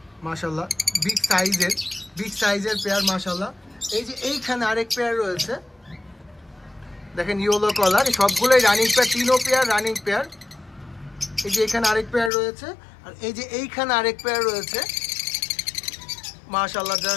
মাশাআল্লাহ, বিগ সাইজের পেয়ার মাশাআল্লাহ। এই যে এইখানে আরেক পেয়ার রয়েছে দেখেন ইয়েলো কালার, সবগুলোই রানিং পেয়ার, তিনও পেয়ার রানিং পেয়ার। এই যে এখানে আরেক পেয়ার রয়েছে, আর এই যে এইখানে আরেক পেয়ার রয়েছে মাশাআল্লাহ।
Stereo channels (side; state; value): right; drops out; at 12.3 s